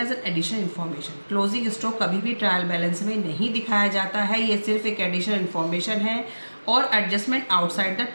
an additional information. Closing stock कभी भी ट्रायल बैलेंस में नहीं दिखाया जाता है, ये सिर्फ एक एडिशनल इन्फॉर्मेशन है और adjustment outside the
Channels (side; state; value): both; inverted; correlation -1.00